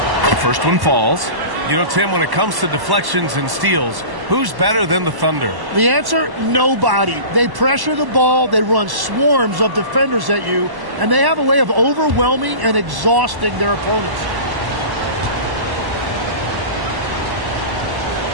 First one falls. You know, Tim, when it comes to deflections and steals, who's better than the Thunder? The answer, nobody. They pressure the ball, they run swarms of defenders at you, and they have a way of overwhelming and exhausting their opponents.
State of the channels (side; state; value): left; late; 1.1 ms